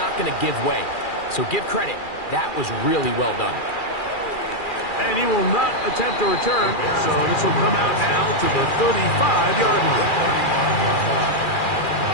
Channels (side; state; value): right; late; 2.4 ms